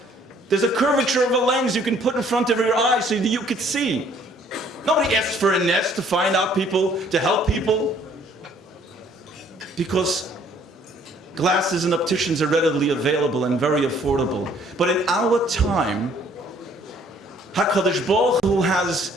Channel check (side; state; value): both; normal; correlation 0.60